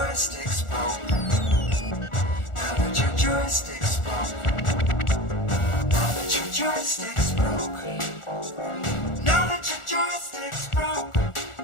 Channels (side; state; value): right; late; 1.4 ms